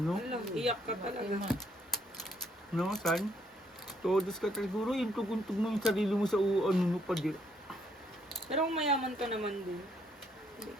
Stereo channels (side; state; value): both; normal; correlation 0.70